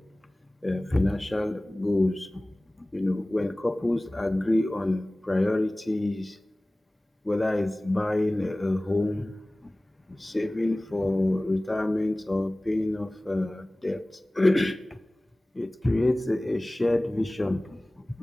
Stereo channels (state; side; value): normal; both; correlation 0.98